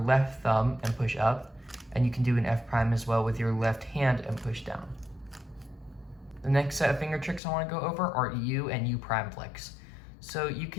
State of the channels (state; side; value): drops out; right; at 7.4 s